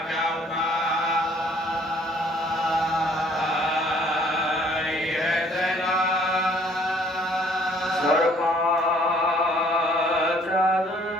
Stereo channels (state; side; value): normal; both; correlation 0.60